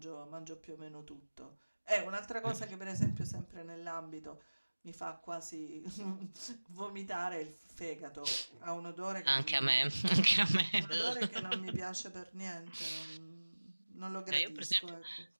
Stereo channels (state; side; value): inverted; both; correlation -1.00